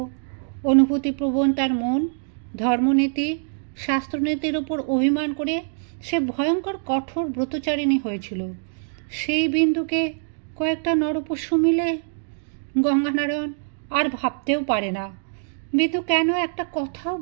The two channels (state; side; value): silent; left; digital silence